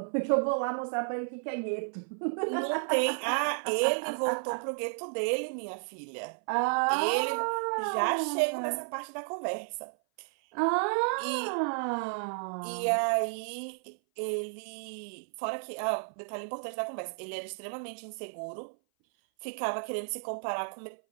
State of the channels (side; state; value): left; silent; 56 dB below the other